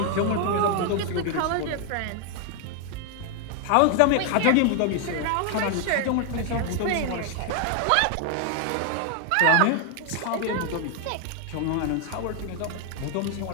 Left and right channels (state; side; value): different; both; correlation 0.00